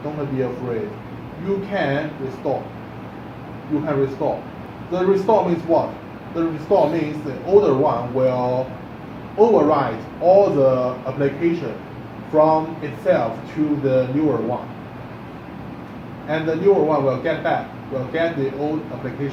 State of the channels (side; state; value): both; identical; correlation 1.00